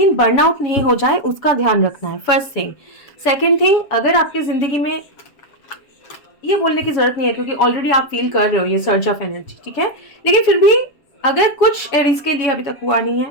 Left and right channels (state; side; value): late; right; 7.1 ms